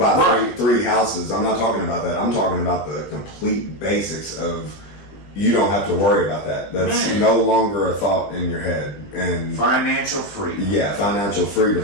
Right. three houses. I'm not talking about that. I'm talking about the complete basics of, you don't have to worry about that. That's Man. no longer a thought in your head. And financial freedom. yeah, financial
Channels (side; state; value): right; late; 20 ms